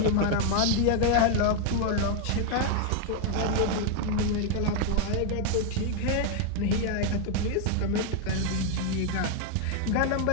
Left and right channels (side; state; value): both; different; correlation 0.01